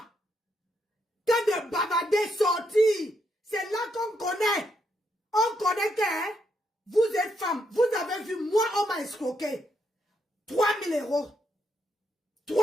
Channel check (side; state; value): both; normal; correlation 0.78